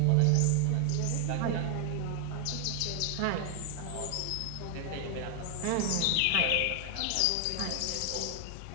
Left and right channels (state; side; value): different; both; correlation 0.00